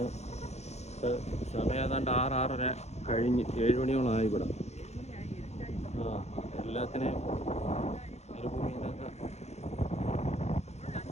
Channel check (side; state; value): right; late; 0.32 ms